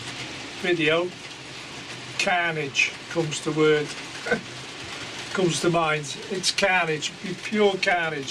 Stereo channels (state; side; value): identical; both; correlation 1.00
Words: video. Carnage comes to mind. It's carnage, pure